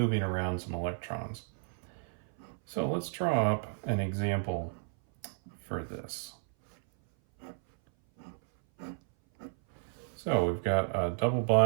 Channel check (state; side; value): silent; left; 56 dB below the other